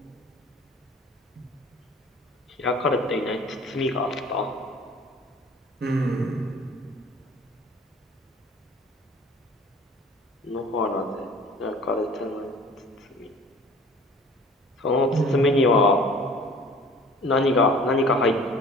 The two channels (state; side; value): normal; both; correlation 0.48